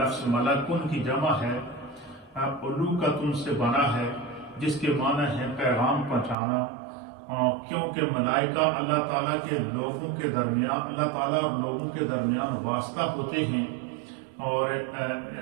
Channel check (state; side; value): drops out; left; at 6.4 s